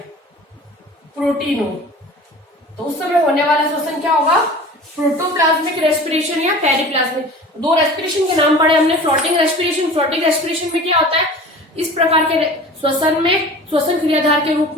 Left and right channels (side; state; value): both; normal; correlation 0.40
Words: प्रोटीन हो तो उस समय होने वाला श्वसन क्या होगा, प्रोटोप्लाज्मिक रेस्पिरेशन या पेरिप्लाज्मिक। दो रेस्पिरेशन के नाम पढ़े हमने, फ्लोटिंग रेस्पिरेशन में क्या होता है, इस प्रकार के श्वसन क्रियाधार के